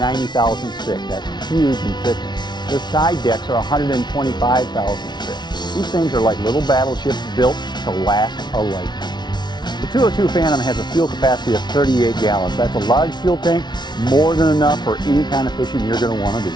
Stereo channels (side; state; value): right; late; 0.20 ms